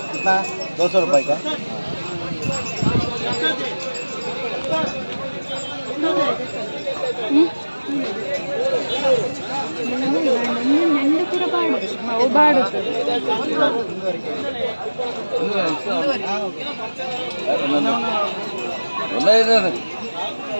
200 रुपए का। ಅವು ಬಾಡು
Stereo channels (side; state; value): both; inverted; correlation -1.00